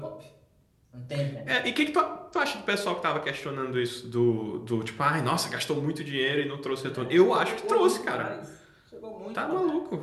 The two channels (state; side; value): identical; both; correlation 1.00